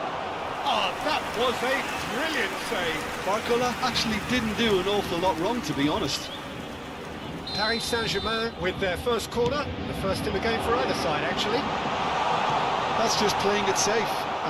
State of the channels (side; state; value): both; identical; correlation 1.00